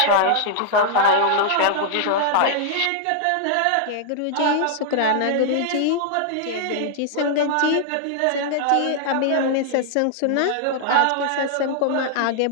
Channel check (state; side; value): different; both; correlation -0.01